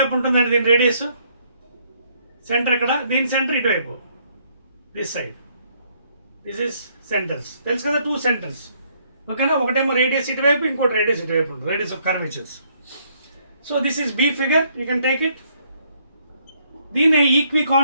ఉంటుందండి, దీని రేడియస్ సెంటర్ ఇక్కడ, దీని సెంటర్ ఇటువైపు this side. This is centres. తెలుసు కదా, 2 సెంటర్స్. ఓకేనా? ఒకటేమో రేడియస్ ఇటువైపు, ఇంకోటి రేడియస్ ఇటువైపు ఉంటుంది, radius of curvatures. So this is B figure, you can take it. దీని equi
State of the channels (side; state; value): both; inverted; correlation -0.68